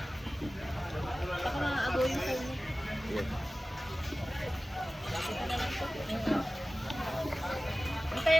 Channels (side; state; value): both; normal; correlation 0.97